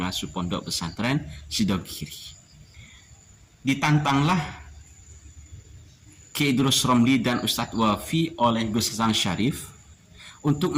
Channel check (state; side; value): identical; both; correlation 1.00